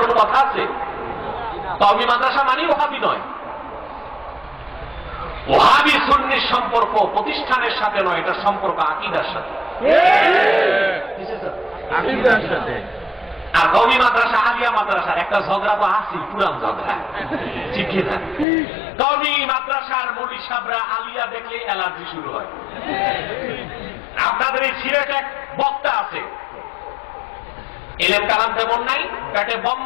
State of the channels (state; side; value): drops out; right; at 18.4 s